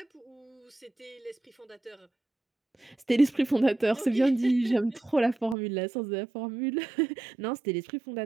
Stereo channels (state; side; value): drops out; left; at 5.6 s